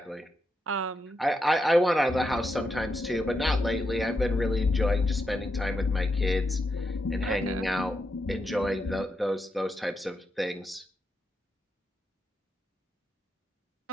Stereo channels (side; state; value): both; normal; correlation 0.84